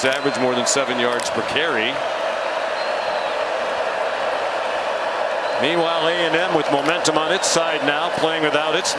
averaged more than 7 yards per carry. Meanwhile, A&M with momentum on its side now, playing without its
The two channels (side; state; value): both; identical; correlation 1.00